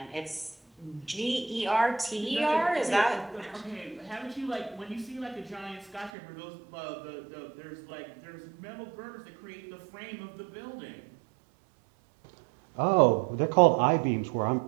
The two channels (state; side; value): drops out; left; at 6.1 s